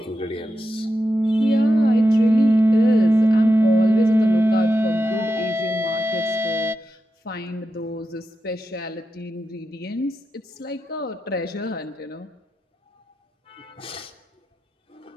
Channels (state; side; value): normal; both; correlation 0.89